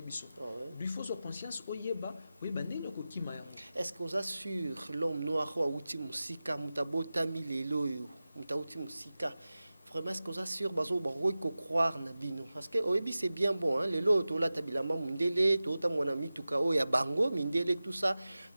biso lui faut so conscience oyeba ndelo ko kima ya est-ce que oza sur l'homme noir wa uti musika mutabota milelo yo mutauti musika vraiment est-ce que ça sur bazo baro ko croire na bino parce que oyebi c'est bien bon hein les loto la tabilama mundele to ta mona mituka o ya bango mindele tout ça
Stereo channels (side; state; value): both; inverted; correlation -0.95